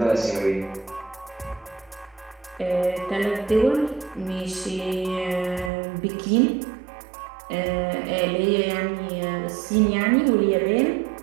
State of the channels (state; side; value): drops out; left; at 5.7 s